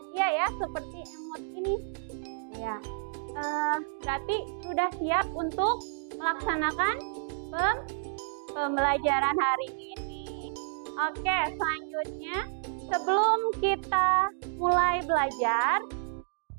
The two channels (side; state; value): left; silent; digital silence